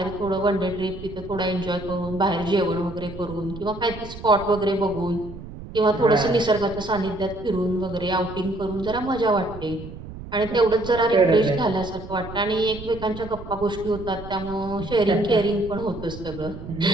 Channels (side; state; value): right; noise; rumble, 13 dB below the sound